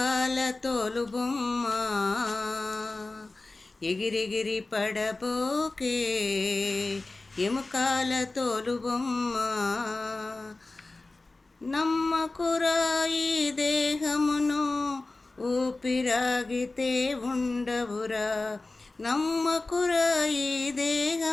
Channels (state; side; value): quieter; right; 3.2 dB